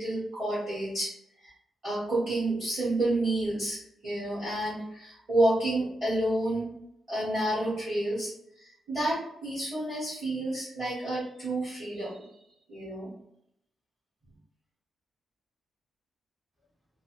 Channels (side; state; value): both; normal; correlation 0.85